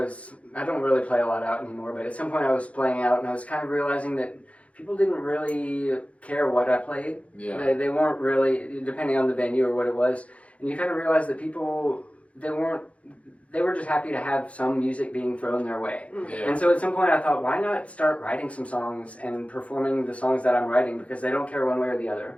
don't really play a lot out anymore, but at some point I was playing out and I was kind of realizing that people didn't really care what I played. Yeah. They weren't really, depending on the venue or what it was, and you kind of realize that people, they were just happy to have some music being thrown their way. Yeah. And so at some point I thought, why not start writing some songs and performing the songs that I'm writing, because they don't care one way or the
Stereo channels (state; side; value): late; right; 0.064 ms